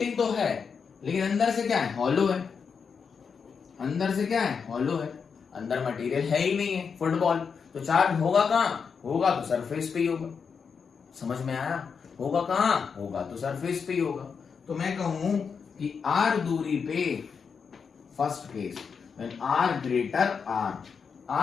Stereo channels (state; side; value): quieter; right; 6.0 dB